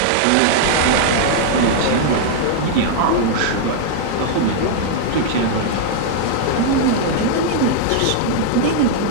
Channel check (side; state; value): both; different; correlation -0.01